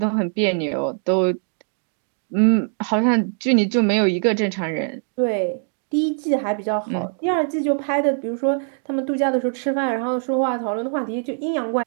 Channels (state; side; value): silent; left; 61 dB below the other